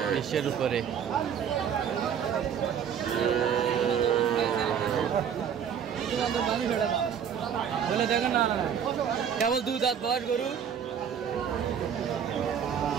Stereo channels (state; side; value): quieter; left; 8.1 dB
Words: 20-এর উপরে। বলে দেখেন না, কেবল 2 দাঁত বয়স গরু।